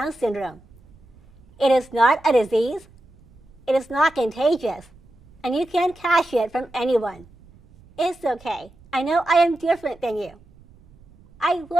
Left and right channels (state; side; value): noise; right; rumble, 27 dB below the sound